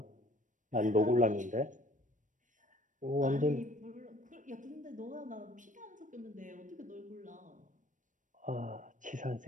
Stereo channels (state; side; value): late; left; 0.37 ms